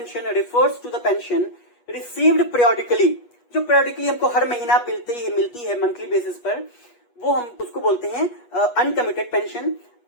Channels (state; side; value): late; right; 8.3 ms